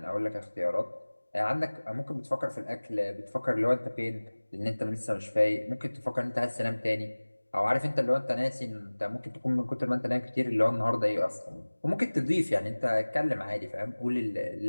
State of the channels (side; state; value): both; inverted; correlation -1.00